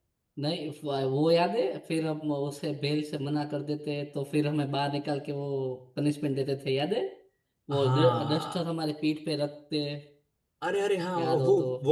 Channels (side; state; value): both; identical; correlation 1.00